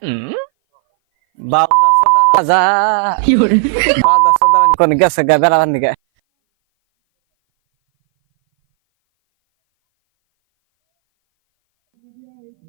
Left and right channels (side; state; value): left; silent; 61 dB below the other